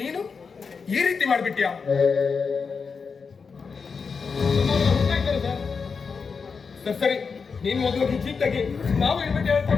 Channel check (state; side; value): quieter; right; 5.4 dB